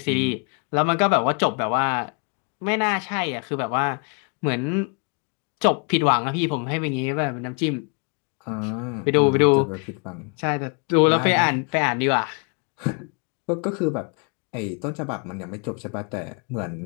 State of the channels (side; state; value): right; quieter; 36.6 dB